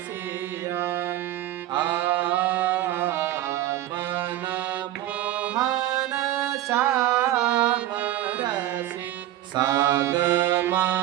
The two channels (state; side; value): quieter; left; 13.9 dB